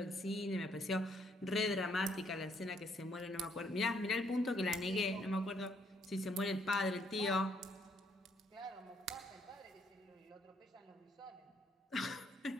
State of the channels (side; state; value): both; normal; correlation 0.69